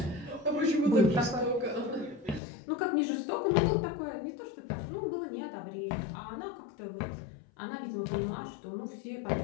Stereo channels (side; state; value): right; drops out; at 2.4 s